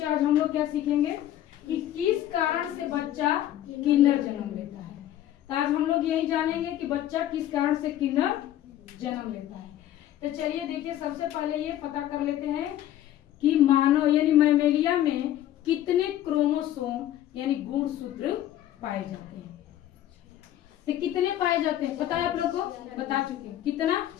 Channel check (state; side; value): quieter; right; 12.5 dB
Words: आज हम लोग क्या सीखेंगे कि किस कारण से बच्चा किन्नर जन्म लेता है। तो आज हम लोग यही जानेंगे कि बच्चा किस कारण से किन्नर जन्म लेता है। तो चलिए देखिए, सबसे पहले ये पता कर लेते हैं कि मानव यानी मैमेलिया में कितने क्रोमोसोम यानी गुणसूत्र पाए जाते हैं। तो कितने पाए जाते हैं पता है आप लोग को? बता चुके हैं। कितना?